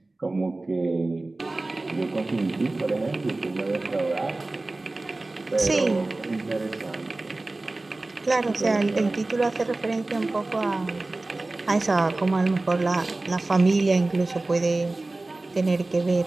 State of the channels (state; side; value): quieter; left; 3.0 dB